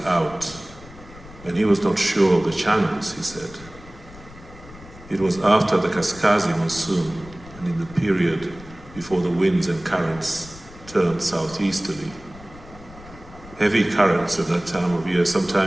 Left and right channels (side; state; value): left; noise; rumble, 19 dB below the sound